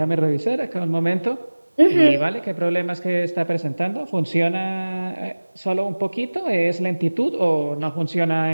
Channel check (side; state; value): both; inverted; correlation -1.00